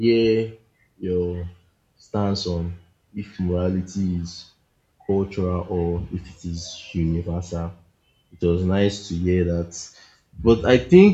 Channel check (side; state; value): both; identical; correlation 1.00